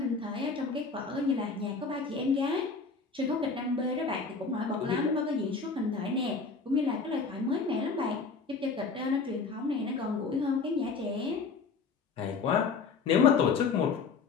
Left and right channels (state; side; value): quieter; right; 4.7 dB